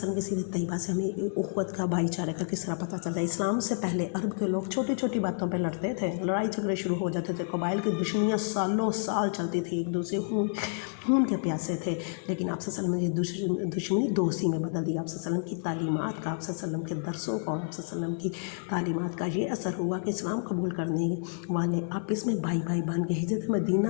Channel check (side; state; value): right; silent; 56 dB below the other